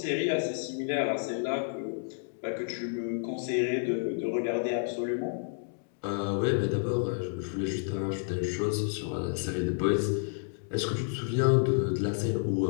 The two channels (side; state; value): right; silent; digital silence